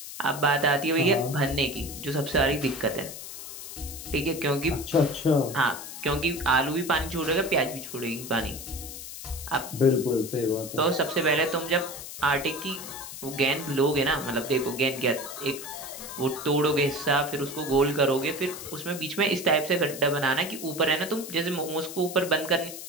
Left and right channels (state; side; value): noise; left; hiss, 11 dB below the sound